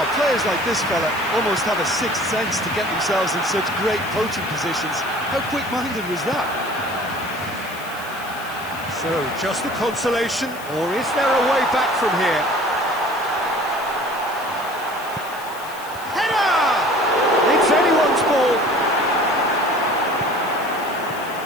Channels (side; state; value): left; noise; hiss, 17 dB below the sound